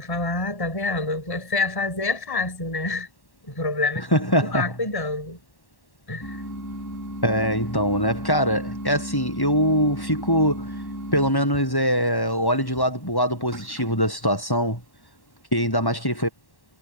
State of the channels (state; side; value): late; right; 1.1 ms